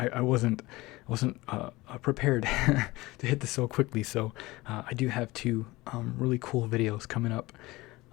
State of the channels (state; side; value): quieter; right; 20.5 dB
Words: wasn't prepared to hit this so quickly. So I do have two really cool videos coming up.